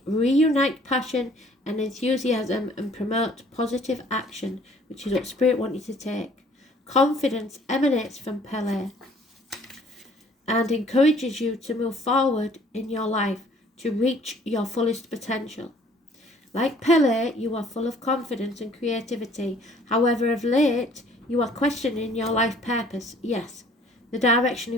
reunite passion and enthusiasm and promote positive action, which is what Spirit wants you to take. Confidence emanates from Pele and encourages you to move forward in your life to reach your fullest potential. Like Pele, you are full of confidence and creativity. However, of late, you are questioning your life purpose. Yes, the direction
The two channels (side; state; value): both; normal; correlation 0.57